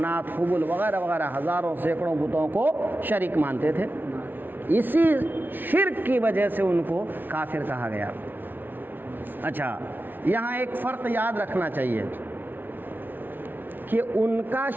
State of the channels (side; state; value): left; late; 0.093 ms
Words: حبل وغیرہ وغیرہ ہزاروں سینکڑوں بتوں کو شریک مانتے تھے۔ اسی شرک کی وجہ سے ان کو کافر کہا گیا۔ اچھا، یہاں ایک فرق یاد رکھنا چاہیے کہ ان کا